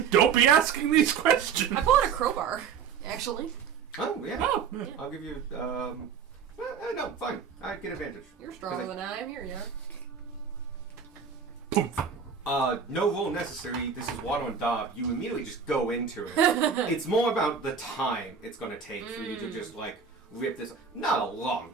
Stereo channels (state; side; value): quieter; left; 6.5 dB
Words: Don't be asking these questions. I pull out a crowbar, actually. Oh yeah. Oh, Yeah. I'll give you. No, fine. I get advantage. You're stronger than I am. Here you are. No roll necessary. This is Watto and Daub. You immediately just go into it. It's more about the time it's going to take for you to just rip this. Not a long